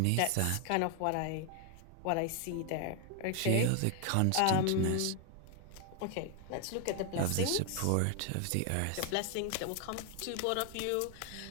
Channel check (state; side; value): different; both; correlation 0.00